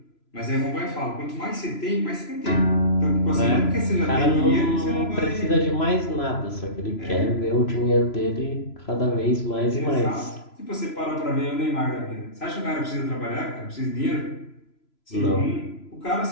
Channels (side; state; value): right; late; 3.0 ms